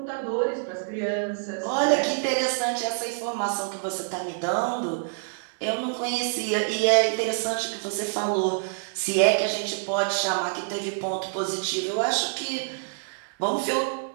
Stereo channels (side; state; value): left; silent; 61 dB below the other